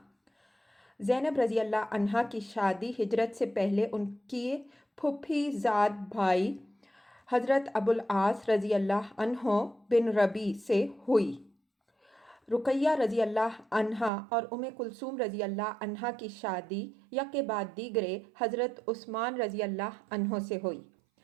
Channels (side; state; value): left; drops out; at 14.1 s